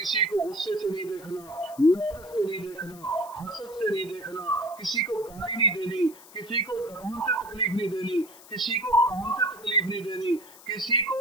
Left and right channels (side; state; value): left; noise; hiss, 21 dB below the sound